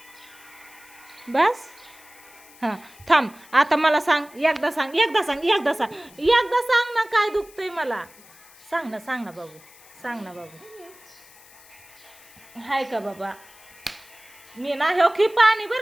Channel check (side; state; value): left; noise; hiss, 24 dB below the sound